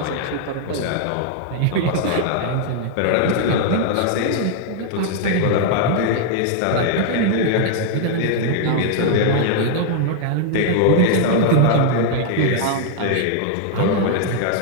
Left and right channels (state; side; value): different; both; correlation 0.00